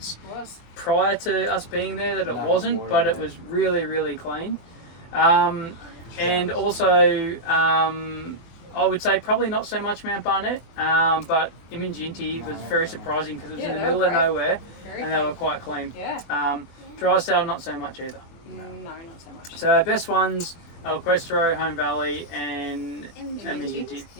prior to us being there that it wasn't, but it was really, really clean. And also, I would say probably not so much Mount Barnett, but Iminginti was very surprising because it was in the middle of nowhere and they were quite clean. Yeah. Drysdale, not so much either. No, not so much. So our best ones, El Questro, Home Valley and Iminginti.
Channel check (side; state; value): right; late; 24 ms